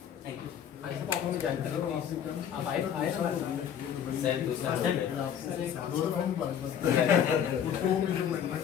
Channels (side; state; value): right; quieter; 8.9 dB